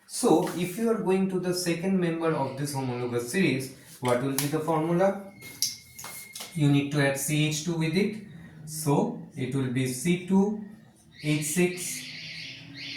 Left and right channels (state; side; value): identical; both; correlation 1.00